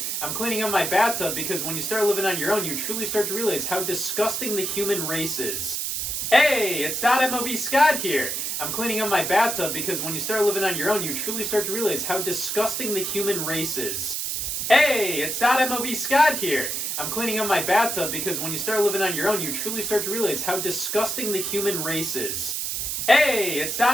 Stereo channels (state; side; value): noise; right; hiss, 2 dB below the sound